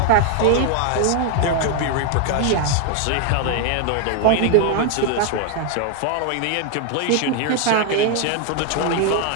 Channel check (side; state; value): both; different; correlation 0.01